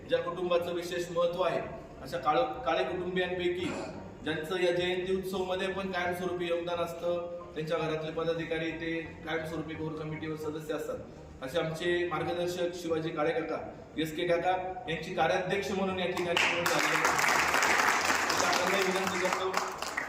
ज्या कुटुंबाचं विशेष महत्व आहे अशा काळे कुटुंबियांपैकी ज्यांचं या जयंती उत्सव मध्ये पण कायमस्वरूपी योगदान असतं, त्यांच्या घरातले पदाधिकारी ते कायमस्वरूपी कोर कमिटीवर सदस्य असतात. असे आमचे मार्गदर्शक शिवाजी काळे काका, SK काका यांची कार्याध्यक्ष म्हणून या ठिकाणी निवड झाली. विनंती करतो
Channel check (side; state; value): both; identical; correlation 1.00